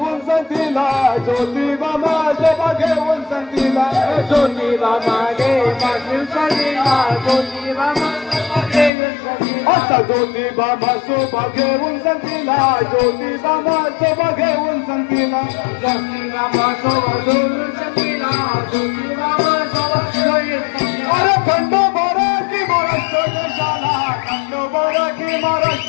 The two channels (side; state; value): right; drops out; at 8.9 s